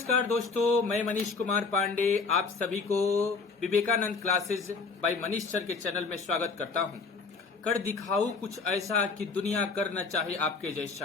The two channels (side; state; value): right; quieter; 4.6 dB